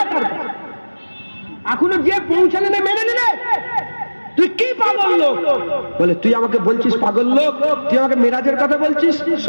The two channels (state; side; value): inverted; both; correlation -1.00